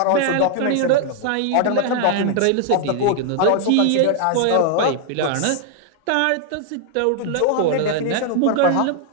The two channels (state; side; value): different; both; correlation 0.00